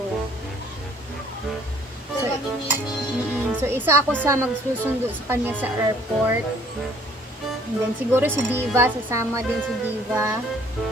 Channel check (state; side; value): normal; both; correlation 0.59